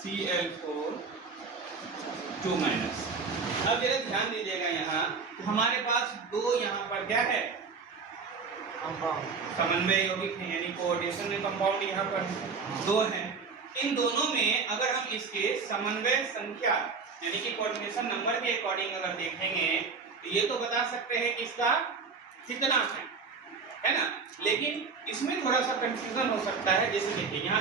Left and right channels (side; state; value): left; quieter; 5.0 dB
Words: 2 minus. अब जरा ध्यान दीजिएगा यहाँ हमारे पास दो यहाँ पर क्या है समन्वय यौगिक है, यानी कोऑर्डिनेशन कंपाउंड यहाँ पर दो हैं। इन दोनों में अगर हम इसके समन्वय संख्या यानी कि कोऑर्डिनेशन नंबर के अकॉर्डिंग अगर देखेंगे तो ये तो बता सकते हैं कि इसका कितना है ना, लेकिन इसमें थोड़ा सा कंफ्यूजन हो सकता है। जैसे देखिए